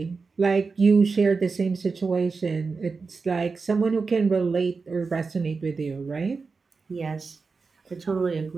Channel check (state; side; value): quieter; left; 4.5 dB